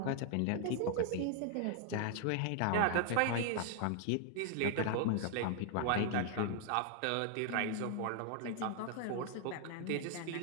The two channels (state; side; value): different; both; correlation 0.00